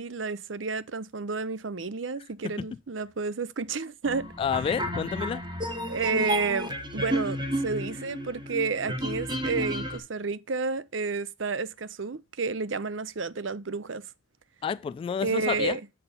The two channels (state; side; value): normal; both; correlation -0.02